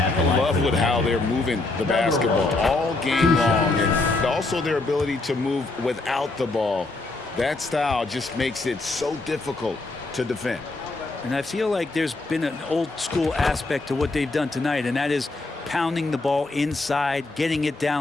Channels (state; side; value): quieter; right; 3.2 dB